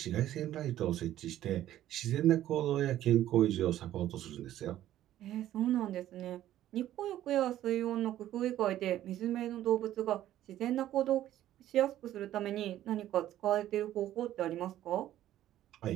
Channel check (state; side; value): quieter; left; 12.9 dB